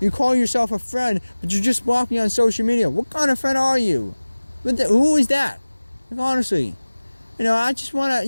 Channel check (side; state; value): both; inverted; correlation -1.00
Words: you call yourself a friend, but you just block me on social media. What kind of friend are you? Who is that? Like, honestly, you know, I just